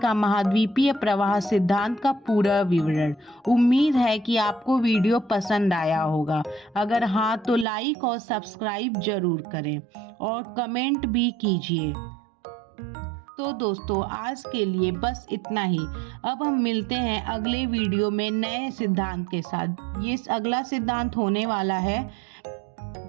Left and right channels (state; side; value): drops out; left; at 7.7 s